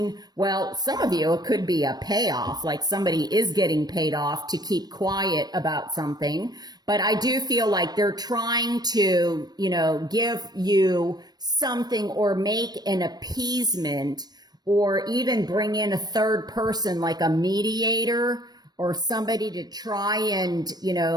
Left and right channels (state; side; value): late; left; 0.19 ms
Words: well, some of you, it could be a payoff, like somebody is getting paid off to keep quiet about something. But I do feel like they're trying to, give you something, or make an appeasement, or even bring in a third person, like a mediator, or somebody to try and,